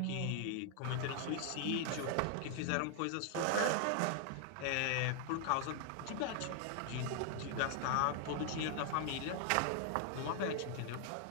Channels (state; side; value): different; both; correlation 0.00